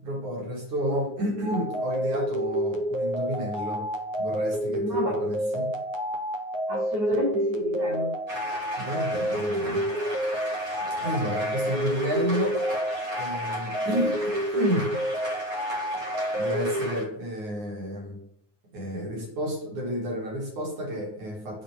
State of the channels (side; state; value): left; late; 9.5 ms